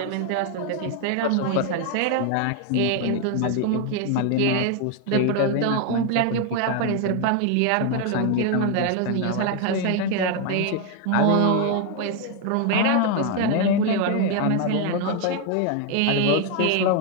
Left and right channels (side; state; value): both; different; correlation 0.01